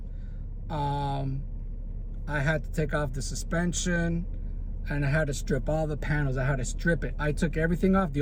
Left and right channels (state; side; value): identical; both; correlation 1.00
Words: I had to take off the suspension, and I had to strip all the panels. I had to strip it. I took everything off.